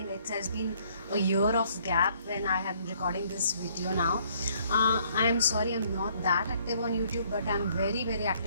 it has been a year of gap when I am recording this video now. I'm sorry I'm not that active on YouTube, but I'm very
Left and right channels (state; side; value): inverted; both; correlation -0.64